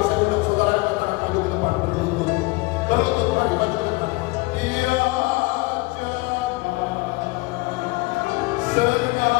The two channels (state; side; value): quieter; right; 23.2 dB